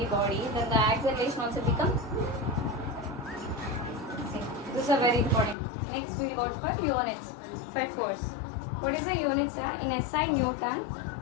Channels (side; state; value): right; drops out; at 5.6 s